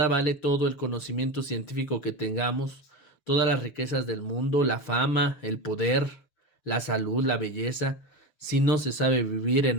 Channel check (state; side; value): late; right; 6.5 ms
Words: vale todo el conocimiento científico que tengamos, todas las riquezas del mundo, la fama, el poder, la salud, la belleza, si no se sabe vivir